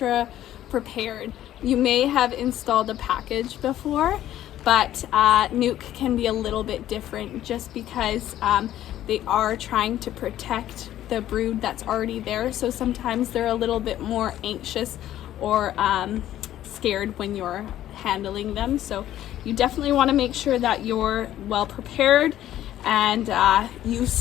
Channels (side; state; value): right; quieter; 12.7 dB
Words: prepared. You may have installed a package before, but NUC can be a little bit different just because they are trying to protect the brood that's already there. So sometimes they're a little bit more anxious or scared when you're handling them. So you definitely want to make sure that you're well prepared and you